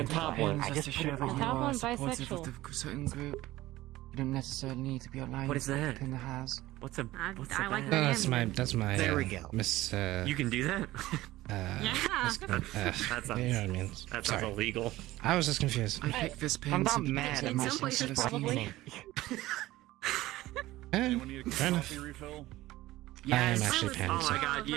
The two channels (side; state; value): left; quieter; 16.9 dB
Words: top thing. one I just just to put show it that on. you Top are one's supportive of bisexual. the certain group. You don't necessarily need to be aligned What is with that? the pin that has. What's a I what's like a that. No, that's my There we go. Miss You can do that? Yeah. That sounds, you know what I mean. that sounds Sorry. illegal. I was just confused. I picked this pin I'm not simply mad because at it In makes some places, sense to probably. Anyone need a Fair enough. coffee refill? I am actually Oh my panicked. god,